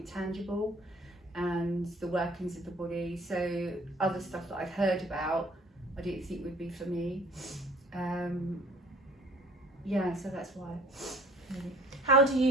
tangible and the workings of the body. So other stuff that I've heard about, I didn't think would be for me. Yeah, so that's why. Really. How do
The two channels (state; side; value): normal; both; correlation 0.53